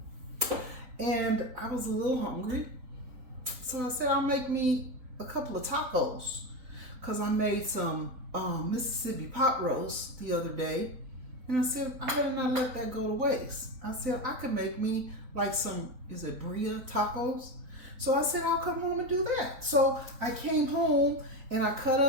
And I was a little hungry, so I said I'll make me a couple of tacos, because I made some Mississippi pot roast the other day, and I said I better not let that go to waste. I said I could make me like some, is it Bria tacos? So I said I'll come home and do that. So I came home and I cut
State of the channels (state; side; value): late; left; 4.0 ms